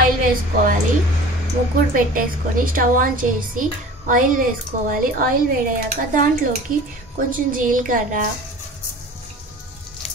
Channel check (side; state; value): both; normal; correlation 0.41